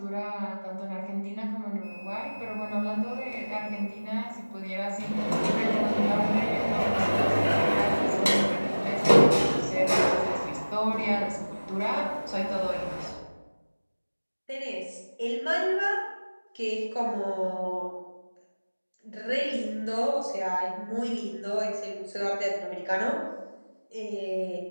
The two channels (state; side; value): inverted; both; correlation -1.00